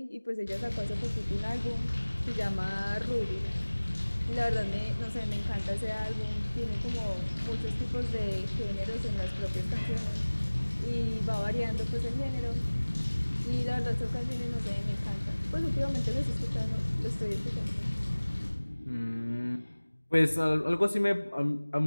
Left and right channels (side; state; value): both; inverted; correlation -1.00